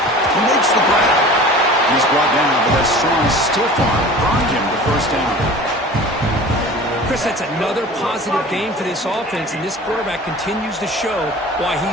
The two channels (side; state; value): both; normal; correlation 0.40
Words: makes the grab. He's brought down, but that strong stiff arm brought him the first down. Chris, that's another positive game for this offense, and this quarterback continues to show why